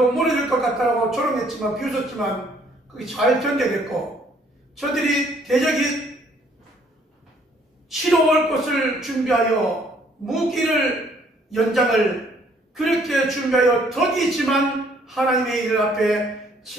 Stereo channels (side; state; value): both; normal; correlation 0.63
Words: 무너질 것 같다고 조롱했지만 비웃었지만 그게 잘 견뎌냈고 저들이 대적이 치러올 것을 준비하여 무기를 연장을 그렇게 준비하여 덕이지만 하나님의 일 앞에